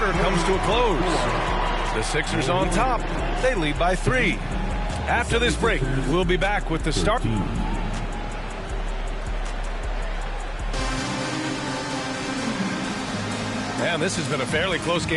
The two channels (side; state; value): both; identical; correlation 1.00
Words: comes to a close. The Sixers on top. They lead by 3. After this break, we'll be back with the start. And this has been a fairly close